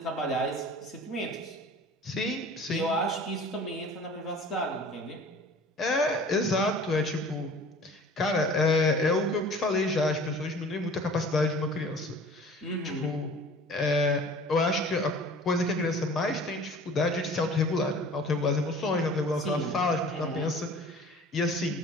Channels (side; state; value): both; normal; correlation 0.45